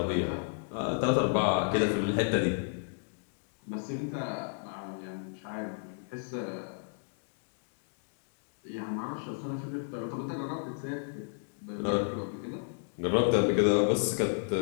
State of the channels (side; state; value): right; silent; digital silence